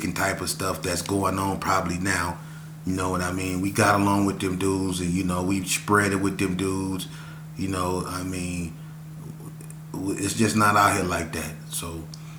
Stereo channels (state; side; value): identical; both; correlation 1.00